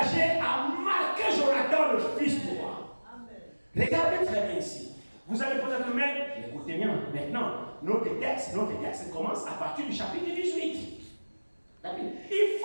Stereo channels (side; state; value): both; inverted; correlation -1.00